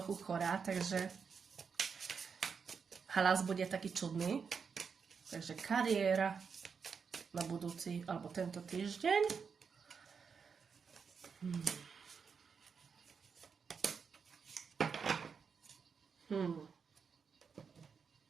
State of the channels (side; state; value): left; quieter; 5.9 dB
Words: chorá, takže hlas bude taký čudný. Takže kariéra na budúci, alebo tento týždeň.